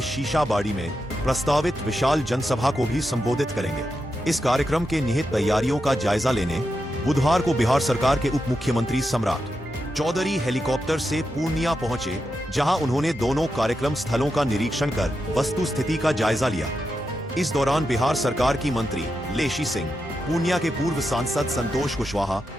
शीशाबाड़ी में प्रस्तावित विशाल जनसभा को भी संबोधित करेंगे। इस कार्यक्रम के निहित तैयारियों का जायजा लेने बुधवार को बिहार सरकार के उप मुख्यमंत्री सम्राट चौधरी हेलीकॉप्टर से पूर्णिया पहुंचे, जहां उन्होंने दोनों कार्यक्रम स्थलों का निरीक्षण कर वस्तु स्थिति का जायजा लिया। इस दौरान बिहार सरकार की मंत्री लेशी सिंह, पूर्णिया के पूर्व सांसद संतोष कुशवाहा,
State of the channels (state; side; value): normal; both; correlation 0.87